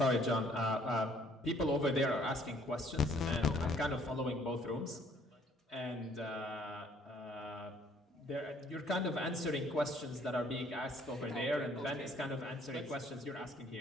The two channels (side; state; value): both; normal; correlation 0.62